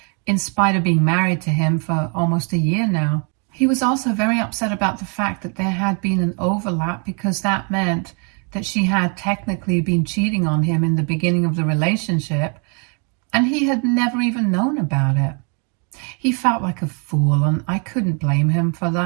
in spite of being married to him for almost a year now. He was also very upset about the fact that there had been an overlap because that meant that she had technically been cheating on him in the beginning of the relationship, and he had never even known about it. He felt like a fool, and I couldn't blame him for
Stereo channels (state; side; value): quieter; left; 37.2 dB